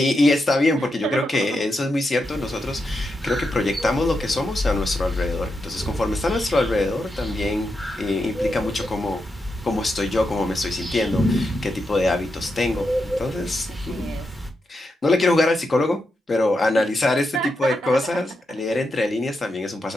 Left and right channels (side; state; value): both; normal; correlation 0.85